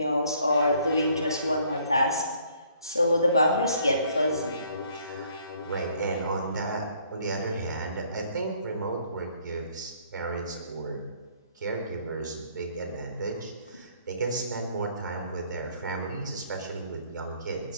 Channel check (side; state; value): both; inverted; correlation -0.63